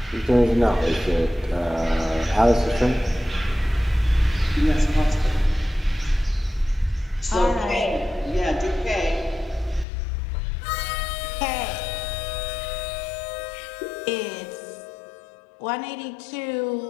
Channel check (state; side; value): drops out; right; at 9.9 s